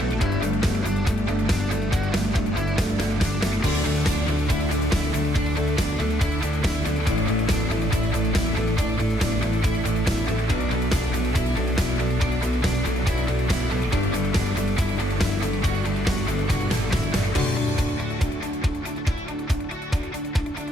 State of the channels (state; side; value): normal; both; correlation 0.71